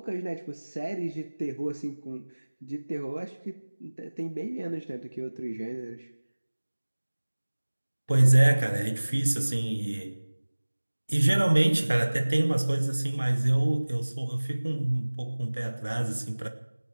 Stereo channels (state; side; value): inverted; both; correlation -1.00